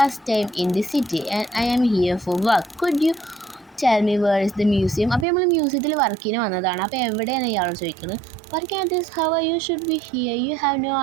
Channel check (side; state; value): left; drops out; at 5.2 s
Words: time in the city and I am here for work. Could you tell me where is the museum? അപ്പോൾ നമ്മൾ മ്യൂസിയത്തിൽ വർക്കിന് വന്നതാണ്. അപ്പോൾ എവിടെയാണ് ഇയാളോട് ചോദിക്കുന്നത്? Working at this, how you should be here. You have no